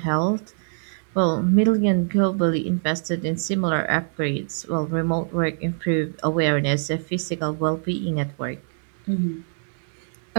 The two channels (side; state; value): left; silent; digital silence